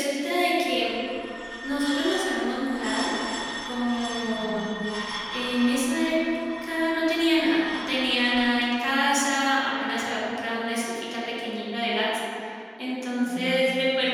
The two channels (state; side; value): identical; both; correlation 1.00